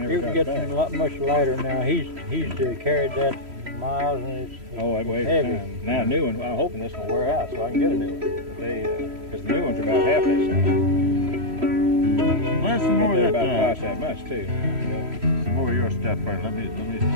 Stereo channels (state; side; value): late; left; 3.1 ms